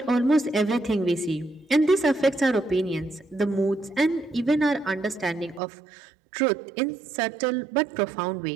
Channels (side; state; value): left; drops out; at 5.6 s